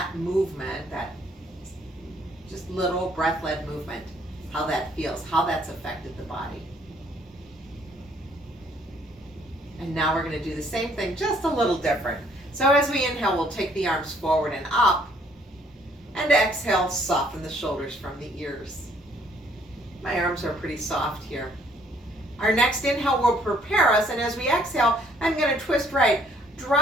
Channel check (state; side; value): normal; both; correlation 0.63